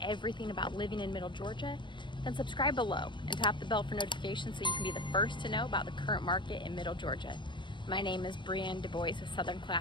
about living in Middle Georgia, then subscribe below and tap the bell for notifications so you can be the first to know about the current market in Middle Georgia. My name is Brienne Du Bois with Southern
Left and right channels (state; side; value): late; right; 0.23 ms